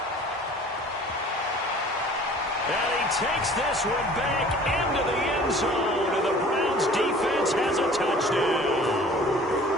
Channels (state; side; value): normal; both; correlation 0.48